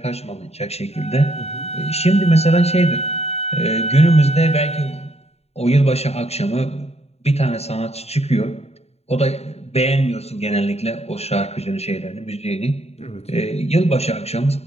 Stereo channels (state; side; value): late; right; 0.30 ms